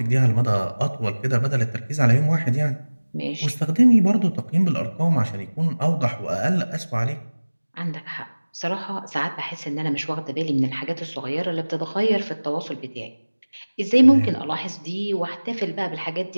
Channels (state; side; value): inverted; both; correlation -1.00